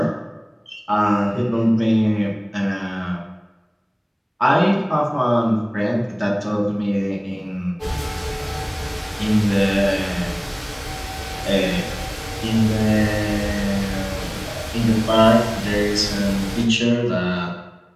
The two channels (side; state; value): both; identical; correlation 1.00